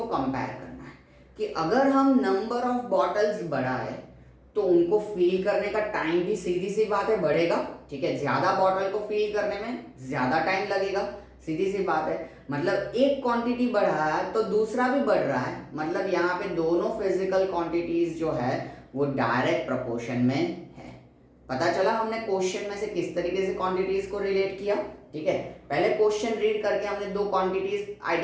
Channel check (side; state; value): both; identical; correlation 1.00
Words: कंपेयर करना है कि अगर हम नंबर ऑफ बॉटल्स बढ़ाए तो उनको फिल करने का टाइम भी सीधी सी बात है बढ़ेगा, ठीक है। ज्यादा बॉटल को फिल करने में ज्यादा टाइम लगेगा, सीधी सी बात है। मतलब एक क्वांटिटी बढ़ा है तो दूसरा भी बढ़ रहा है, मतलब यहाँ पे दोनों फिजिकल क्वांटिटीज जो है वो डायरेक्ट प्रोपोर्शन में है। पता चला हमने क्वेश्चन में से किस तरीके से क्वांटिटीज को रिलेट किया, ठीक है। पहले क्वेश्चन रीड करके हमने दो क्वांटिटीज